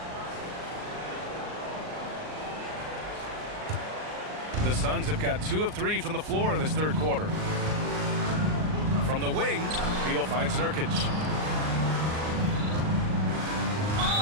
The Suns have got 2 of 3 from the floor in this third quarter. From the wing, Beal finds Nurkic.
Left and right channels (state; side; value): late; left; 39 ms